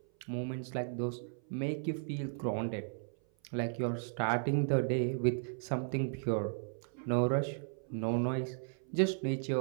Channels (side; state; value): left; silent; 54 dB below the other